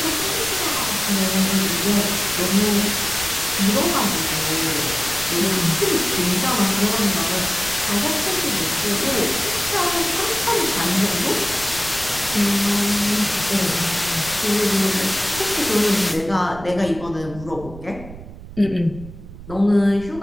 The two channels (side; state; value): right; noise; rumble, 15 dB below the sound